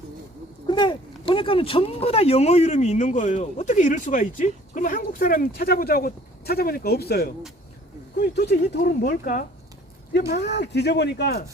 근데 보니까는 전부 다 영어 이름이 있는 거예요. 어떻게 이럴 수가 있지? 그러면 한국 사람 찾아보자고 찾아보니까 없어요. 그럼 도대체 이 돌은 뭘까? 이게 막 뒤져보니까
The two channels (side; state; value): both; normal; correlation 0.53